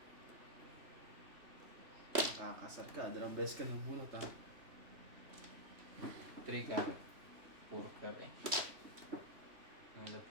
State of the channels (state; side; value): late; left; 3.2 ms